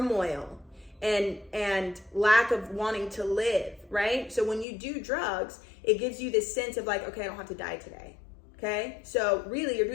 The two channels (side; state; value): right; drops out; at 4.7 s